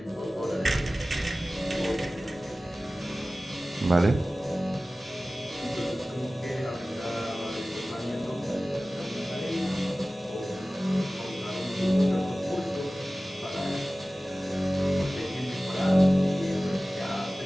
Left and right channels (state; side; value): normal; both; correlation 0.97